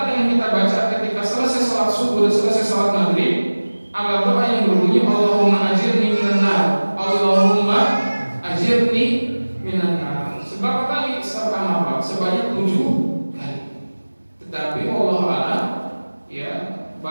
yang kita baca ketika selesai sholat subuh dan selesai sholat maghrib, ada doa yang berbunyi Allahumma ajirni minan nar, Allahumma ajirni minan nar. Sebab kali pertama Pak sebanyak 7 kali. Tetapi Allah a'lam, ya,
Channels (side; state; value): both; inverted; correlation -1.00